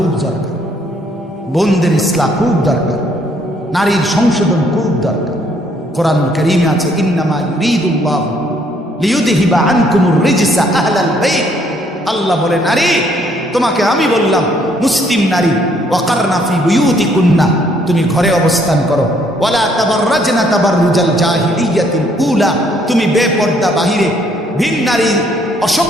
দরকার, বোনদের ইসলাহ খুব দরকার, নারীর সংশোধন খুব দরকার। কোরআন কারীমে আছে, ইন্নামা ইউরিদুল্লাহু লিইউযহিবা আনকুমুর রিজসা আহলাল বাইত। আল্লাহ বলে, নারী তোমাকে আমি বললাম, মুসলিম নারী, ওয়াকারনা ফি বুয়ুতিকুন্না, তুমি ঘরে অবস্থান করো, ওয়ালা তাবাররাজনা তাবাররুজাল জাহিলিয়াতিল উলা, তুমি বেপর্দা বাহিরে ভিন নারী,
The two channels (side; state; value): both; normal; correlation 0.66